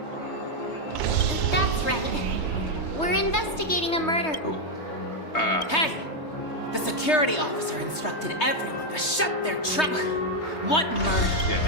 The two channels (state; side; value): late; right; 3.2 ms